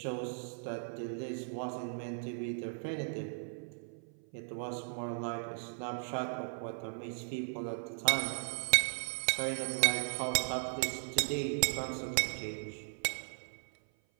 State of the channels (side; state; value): left; silent; 53 dB below the other